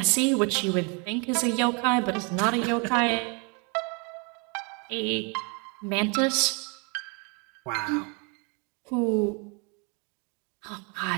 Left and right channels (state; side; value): quieter; left; 33.9 dB